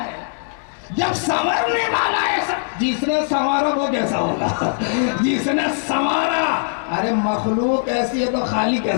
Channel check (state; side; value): silent; right; 66 dB below the other